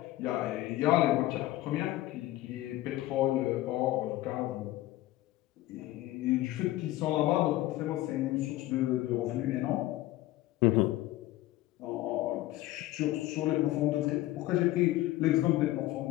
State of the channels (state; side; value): quieter; right; 16.2 dB